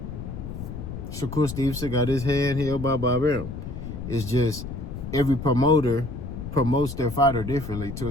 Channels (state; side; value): noise; left; rumble, 8 dB below the sound